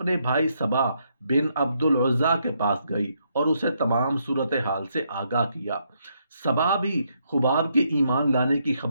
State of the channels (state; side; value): inverted; both; correlation -0.76